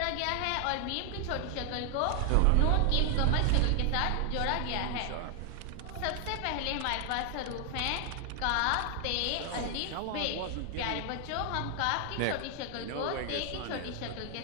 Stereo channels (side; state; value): both; different; correlation 0.00